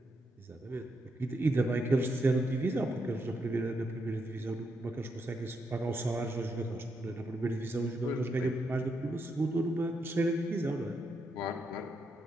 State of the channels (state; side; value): normal; both; correlation 0.80